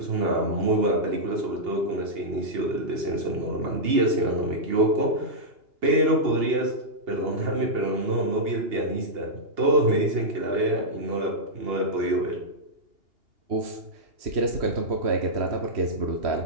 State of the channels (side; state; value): left; late; 2.8 ms